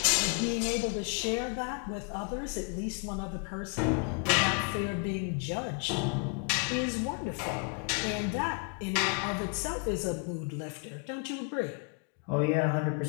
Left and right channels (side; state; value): right; quieter; 36.4 dB